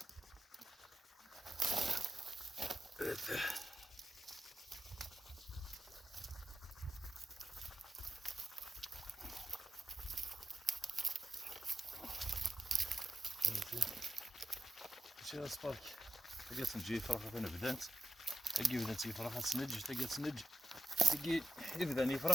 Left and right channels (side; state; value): both; normal; correlation 0.90